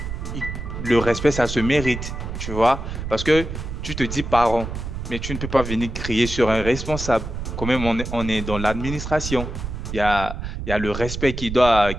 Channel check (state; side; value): noise; right; rumble, 6 dB below the sound